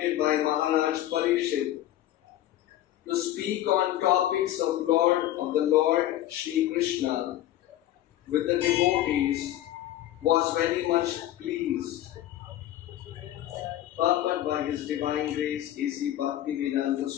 by Maharaj Parikshit to speak on topics of the Lord Shri Krishna with the devotees was very much pleased. Purport by His Divine Grace A.C. Bhaktivedanta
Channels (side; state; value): right; quieter; 13.4 dB